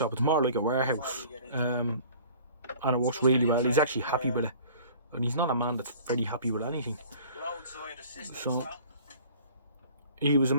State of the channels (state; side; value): inverted; both; correlation -0.48